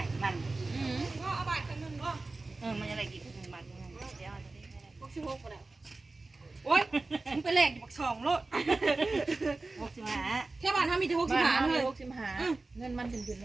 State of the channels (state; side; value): quieter; left; 3.4 dB